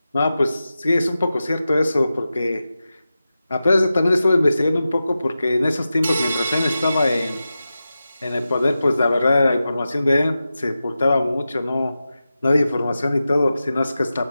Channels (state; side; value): inverted; both; correlation -0.93